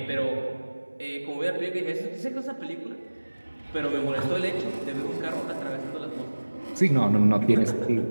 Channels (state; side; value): inverted; both; correlation -1.00